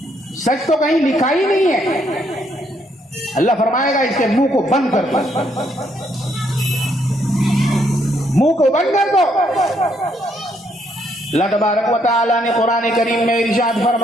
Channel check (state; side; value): normal; both; correlation 0.72